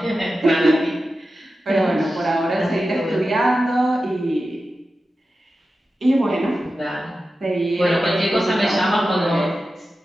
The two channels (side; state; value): both; normal; correlation 0.92